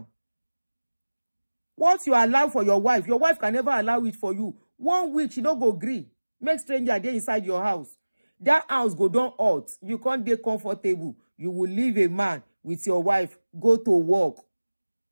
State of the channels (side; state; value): both; inverted; correlation -1.00